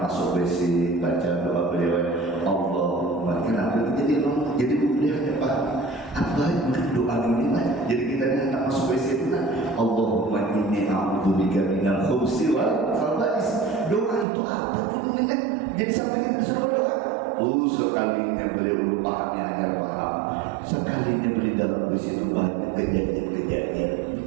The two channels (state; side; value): drops out; left; at 14.2 s